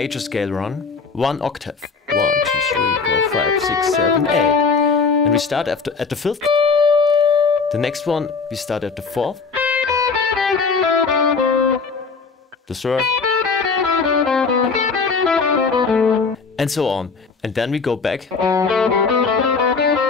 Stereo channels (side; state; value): right; quieter; 4.8 dB